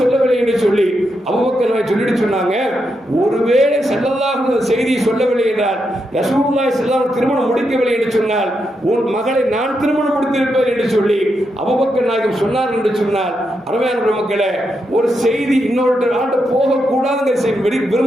சொல்லவில்லை என்று சொல்லி அபூபக்கர் நாயகம் சொல்லிட்டு சொன்னாங்க, ஒருவேளை ஸல்லல்லாஹு அலைஹி செய்தியை சொல்லவில்லை என்றால், ரசூலுல்லாஹி ஸல்லல்லாஹு அலைஹி திருமணம் முடிக்கவில்லை என்று சொன்னால், உன் மகளை நான் திருமணம் முடித்திருப்பேன் என்று சொல்லி அபூபக்கர் நாயகம் சொன்னார் என்று சொன்னால், அருமையான மக்களே, ஒரு செய்தி இன்னொரு ஆண்டு போகக்கூடாதுங்கிற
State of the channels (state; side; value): normal; both; correlation 0.83